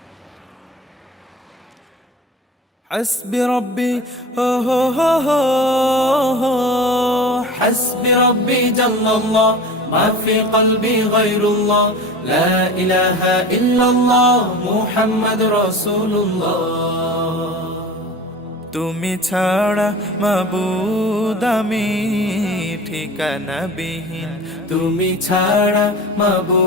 حسبي ربي هو حسبي ربي جل الله ما في قلبي غير الله لا إله إلا الله محمد رسول الله তুমি ছাড়া মাবুদ আমি ঠিকানা বিহীন তুমি ছাড়া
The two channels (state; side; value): normal; both; correlation 0.35